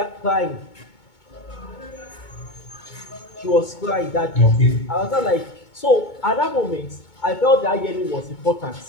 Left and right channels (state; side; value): late; right; 2.2 ms